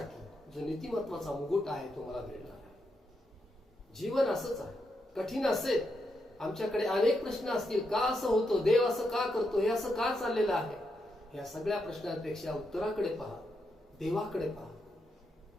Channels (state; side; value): normal; both; correlation 0.82